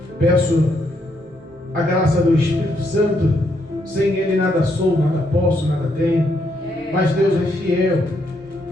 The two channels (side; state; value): both; normal; correlation 0.76